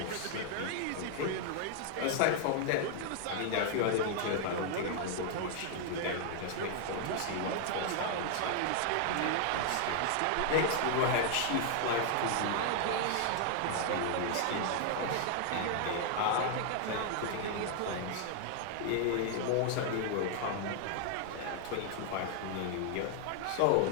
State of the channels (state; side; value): different; both; correlation 0.00